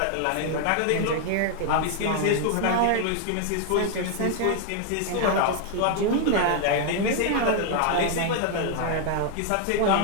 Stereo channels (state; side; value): different; both; correlation 0.01